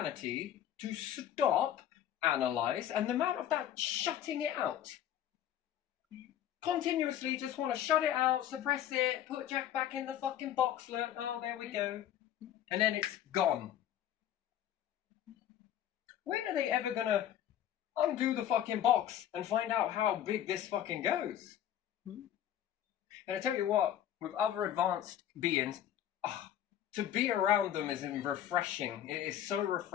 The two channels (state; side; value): quieter; right; 11.0 dB